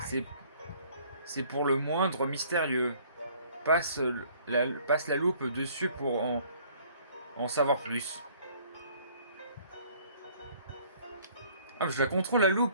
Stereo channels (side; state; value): both; inverted; correlation -0.58